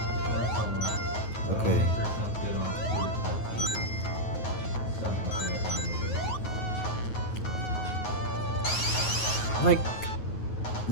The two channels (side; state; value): right; late; 9.6 ms